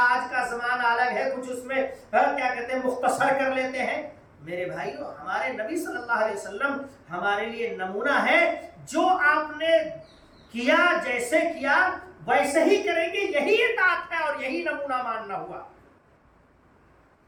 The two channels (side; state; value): both; identical; correlation 1.00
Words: آج کا زمانہ الگ ہے، کچھ اس میں کیا کہتے ہیں مختصر کر لیتے ہیں۔ میرے بھائیو، ہمارے نبی صلی اللہ علیہ وسلم ہمارے لیے نمونہ ہے۔ جو آپ نے کیا، جیسے کیا ویسے ہی کریں گے، یہی اطاعت ہے اور یہی نمونہ ماننا ہوا۔